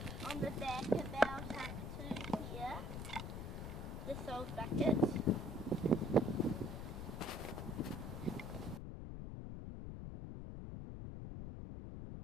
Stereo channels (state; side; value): noise; left; rumble, 6 dB below the sound